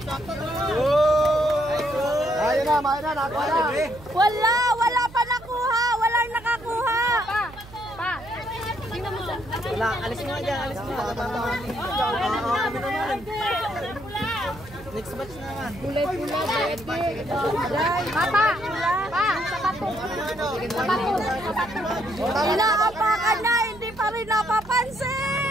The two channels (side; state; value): right; noise; hum, 18 dB below the sound